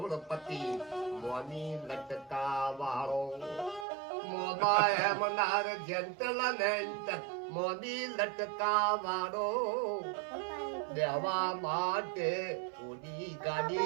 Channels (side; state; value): left; drops out; at 3.9 s